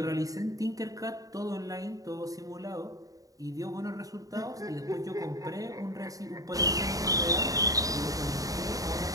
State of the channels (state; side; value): late; left; 0.17 ms